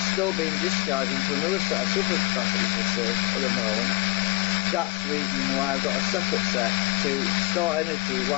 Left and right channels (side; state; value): right; quieter; 22.2 dB